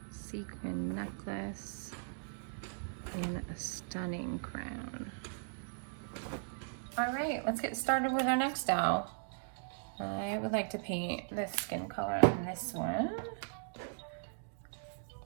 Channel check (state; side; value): silent; left; digital silence